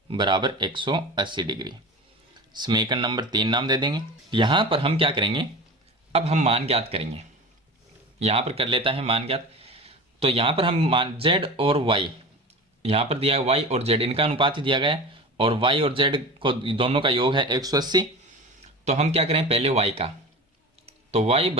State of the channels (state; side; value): normal; both; correlation 0.32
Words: बराबर 180 डिग्री। समीकरण नंबर 3 नाम दे देंगे। यहां पर हम क्या करेंगे, अब हम मान ज्ञात करेंगे। यहां पर कर लेता है मान ज्ञात। तो यहां पर हम मान z और y, यहां पर दिया है y और z, इनका अनुपात ही दिया गया है और y और z को दोनों का योग है 180। तो हम क्या करें, पहले y का, तो y